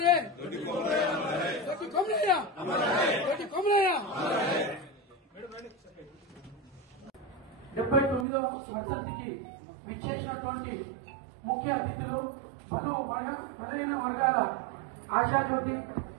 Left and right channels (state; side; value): drops out; left; at 8.2 s